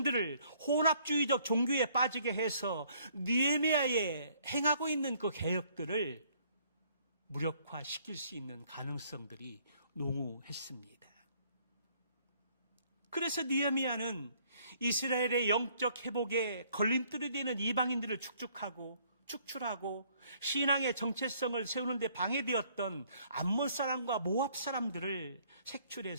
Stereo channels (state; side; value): inverted; both; correlation -0.63